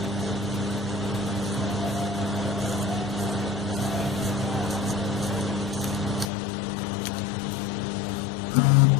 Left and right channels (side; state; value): right; drops out; at 6.3 s